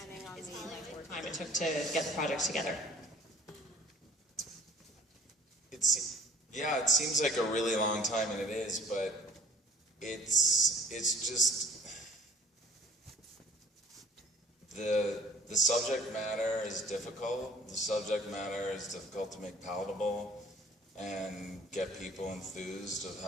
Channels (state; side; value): normal; both; correlation 0.53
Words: on the Time it took to get the project together. It seems like a really long time, and it is, but it's just the subject matter is difficult. The subject matter is difficult to make palatable and get people enthused of